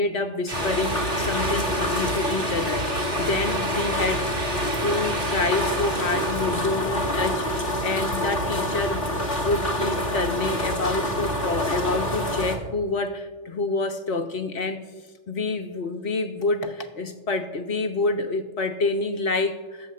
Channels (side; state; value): right; late; 3.8 ms